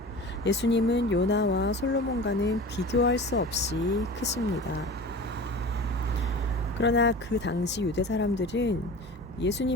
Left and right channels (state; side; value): normal; both; correlation 0.36